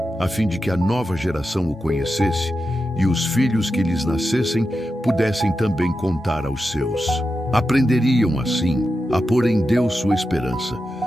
a fim de que a nova geração o conhecesse e os filhos que lhes nascessem pudessem também contar aos seus. Aprenderiam, assim, a pôr em Deus sua esperança,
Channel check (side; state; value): both; normal; correlation 0.89